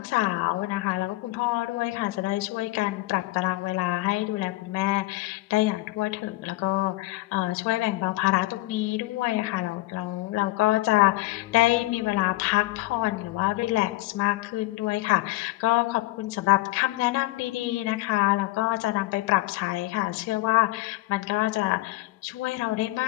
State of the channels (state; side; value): quieter; right; 19.0 dB